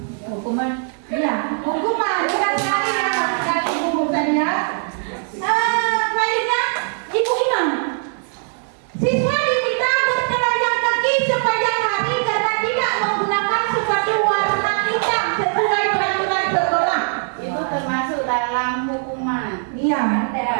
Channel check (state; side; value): silent; left; 58 dB below the other